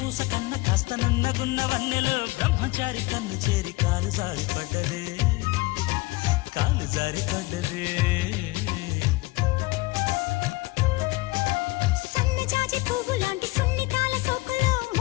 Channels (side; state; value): right; quieter; 21.5 dB